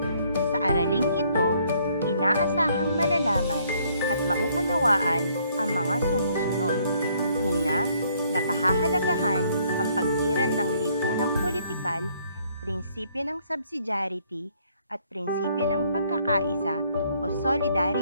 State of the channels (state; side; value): inverted; both; correlation -0.66